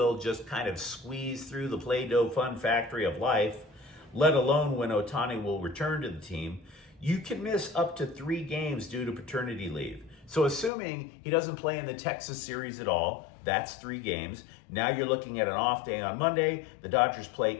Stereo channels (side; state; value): right; drops out; at 10.7 s